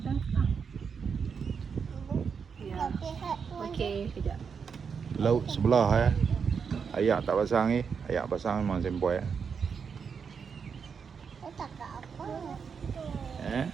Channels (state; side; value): quieter; left; 6.2 dB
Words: ke? Ya. Okey, kejap. Laut sebelah Ayak tak pasang ni. Ayak pasang memang sempoi